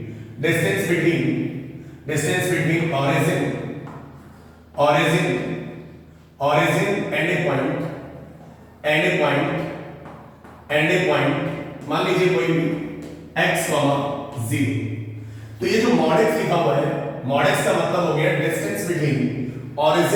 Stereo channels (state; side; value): identical; both; correlation 1.00